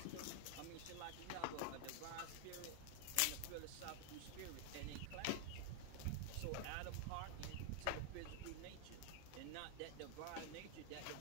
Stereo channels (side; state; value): both; different; correlation 0.00